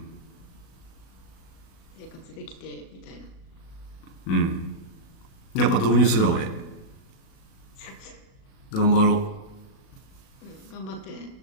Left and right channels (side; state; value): right; late; 37 ms